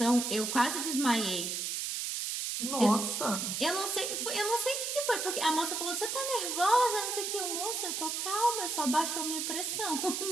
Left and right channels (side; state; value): right; noise; hiss, 2 dB below the sound